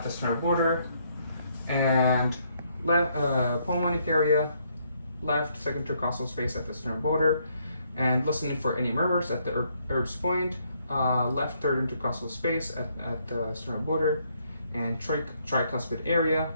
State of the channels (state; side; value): inverted; both; correlation -0.71